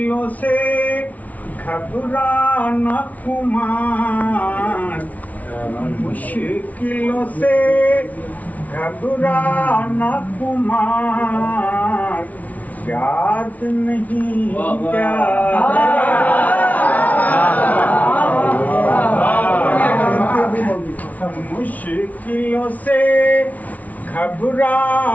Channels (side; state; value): right; late; 0.072 ms